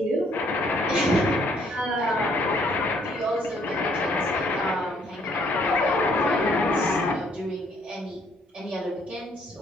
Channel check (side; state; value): both; normal; correlation 0.65